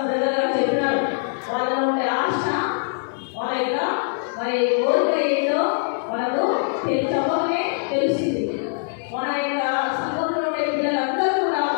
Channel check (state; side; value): silent; right; 64 dB below the other